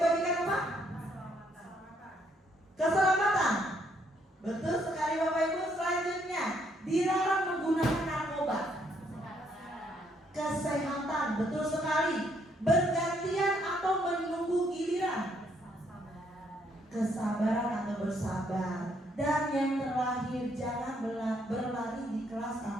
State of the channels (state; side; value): normal; both; correlation 0.71